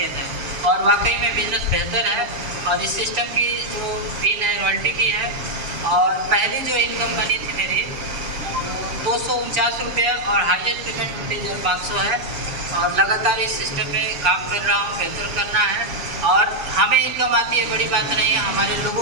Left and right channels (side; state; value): left; late; 6.9 ms